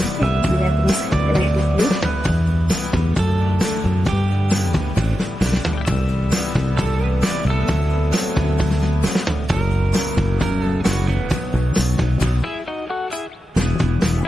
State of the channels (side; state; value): both; normal; correlation 0.90